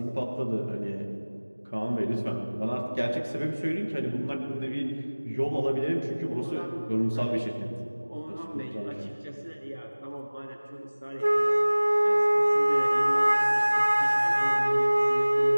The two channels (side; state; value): both; inverted; correlation -1.00